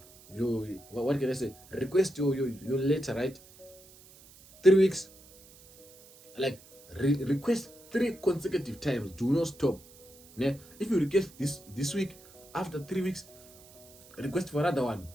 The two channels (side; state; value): right; noise; hiss, 23 dB below the sound